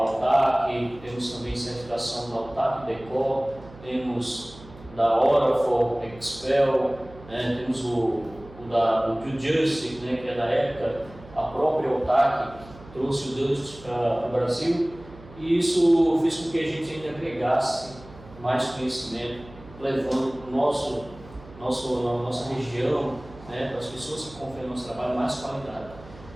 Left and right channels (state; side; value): noise; right; hum, 19 dB below the sound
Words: temos também certificação da Altac Decor, temos da Orafor, Expel, né, temos o do Justice, né, que é da época, a própria Altac trouxe o Dust para o Brasil, e isso fez com que a gente ainda agregasse mais conhecimento, levando para nossa região, né, para as pessoas que confiam no nosso trabalho, mais qualidade.